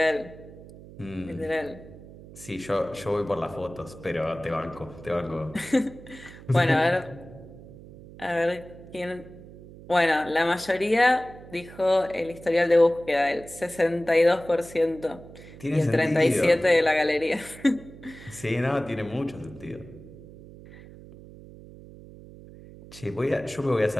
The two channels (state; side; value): noise; right; hum, 18 dB below the sound